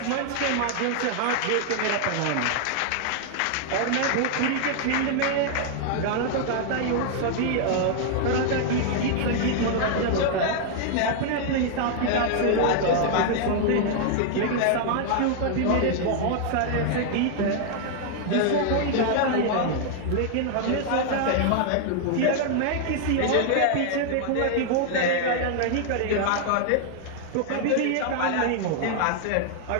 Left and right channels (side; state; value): both; different; correlation 0.00